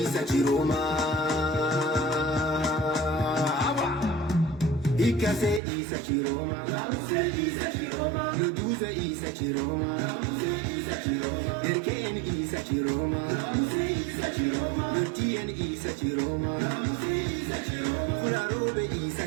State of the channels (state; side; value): drops out; left; at 5.6 s